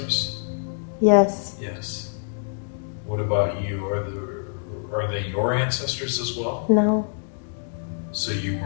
Yes. Yes. What about you? Are they your ancestors as well? No. So you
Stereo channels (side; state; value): right; silent; digital silence